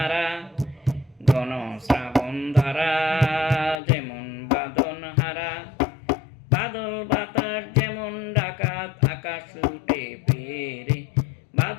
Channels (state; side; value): drops out; right; at 3.8 s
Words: ঘন শ্রাবণ ধারা যেমন বাঁধন হারা। বাদল বাতাস যেমন ডাকাত আকাশ লুটে পেরে,